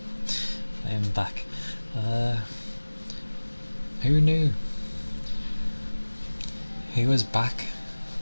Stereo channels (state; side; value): inverted; both; correlation -1.00